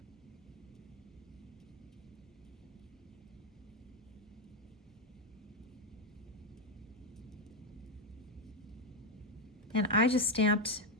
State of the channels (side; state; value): both; normal; correlation 0.05